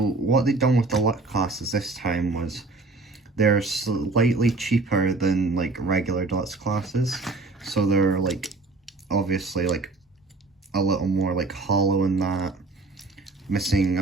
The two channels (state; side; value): quieter; left; 3.4 dB